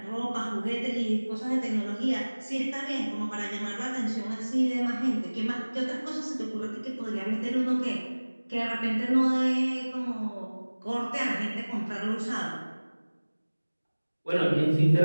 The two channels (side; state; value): both; inverted; correlation -1.00